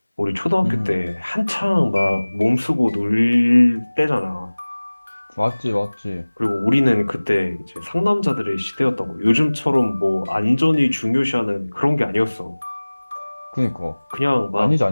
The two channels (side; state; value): both; inverted; correlation -1.00